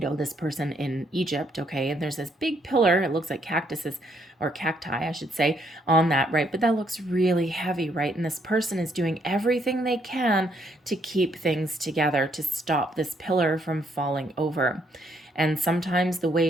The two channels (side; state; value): both; normal; correlation 0.71